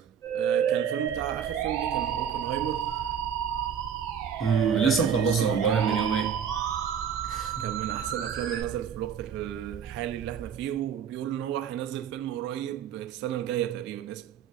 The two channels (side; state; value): left; quieter; 7.8 dB